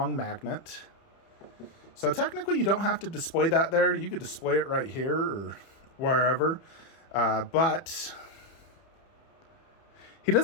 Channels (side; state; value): right; late; 30 ms